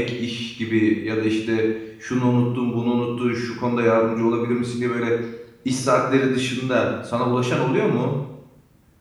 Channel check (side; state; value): both; identical; correlation 1.00